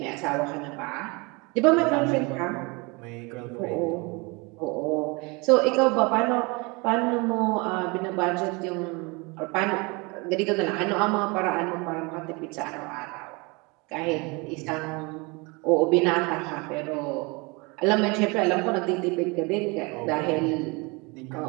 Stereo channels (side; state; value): left; quieter; 27.9 dB